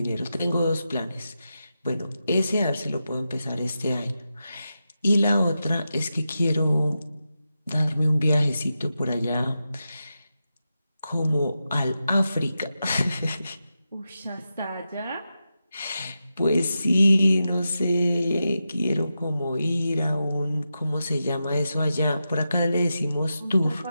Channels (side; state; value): both; inverted; correlation -0.89